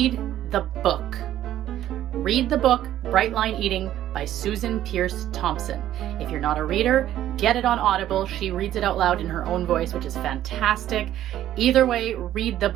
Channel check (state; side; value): quieter; left; 12.4 dB